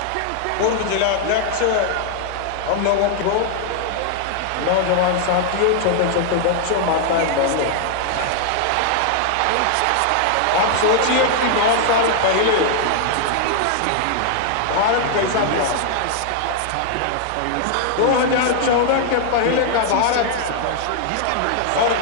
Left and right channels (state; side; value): different; both; correlation -0.01